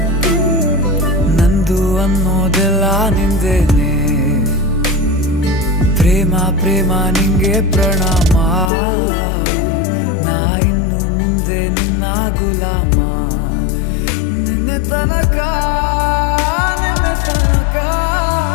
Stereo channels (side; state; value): right; drops out; at 8.7 s